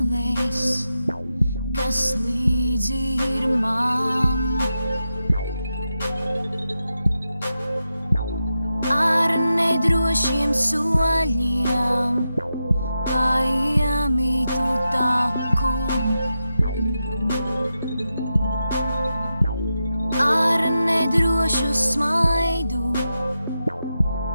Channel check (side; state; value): both; inverted; correlation -0.89